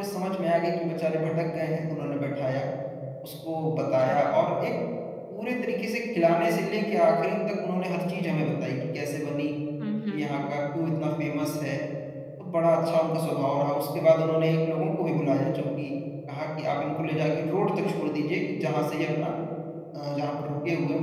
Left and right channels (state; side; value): identical; both; correlation 1.00